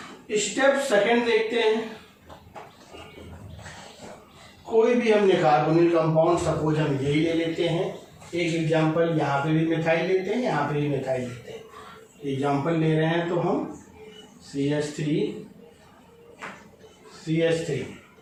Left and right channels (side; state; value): both; identical; correlation 1.00